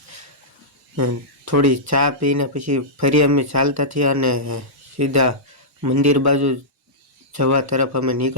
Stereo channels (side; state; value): both; normal; correlation -0.14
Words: અને થોડી ચા પીને પછી ફરી અમે ચાલતા થયા અને સીધા મંદિર બાજુ જવા તરફ અમે